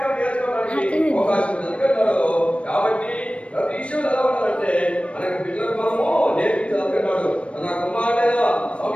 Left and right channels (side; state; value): right; late; 0.061 ms